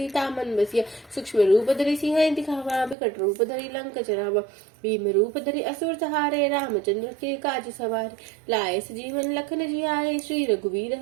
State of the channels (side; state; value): left; drops out; at 3.0 s